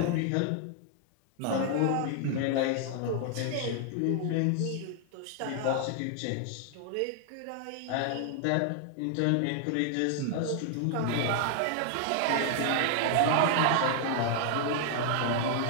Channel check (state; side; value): different; both; correlation 0.00